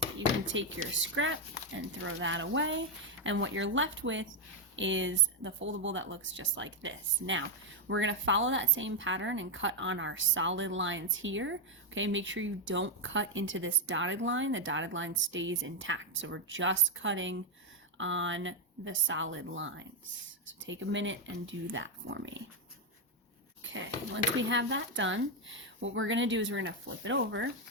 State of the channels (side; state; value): both; normal; correlation 0.02